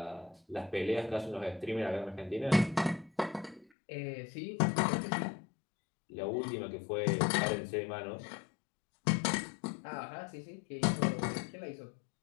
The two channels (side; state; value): right; drops out; at 3.7 s